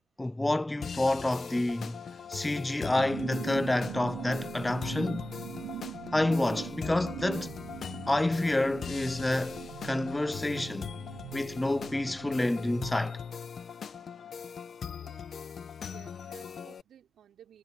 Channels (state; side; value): normal; both; correlation 0.96